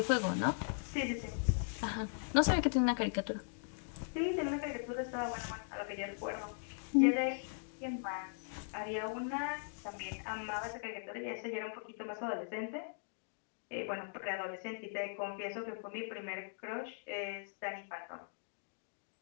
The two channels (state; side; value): silent; right; digital silence